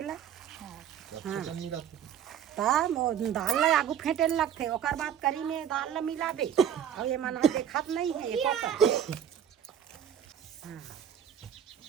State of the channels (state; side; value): quieter; left; 9.2 dB